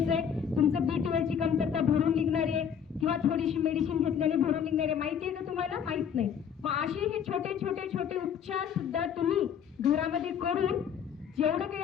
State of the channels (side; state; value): right; quieter; 8.0 dB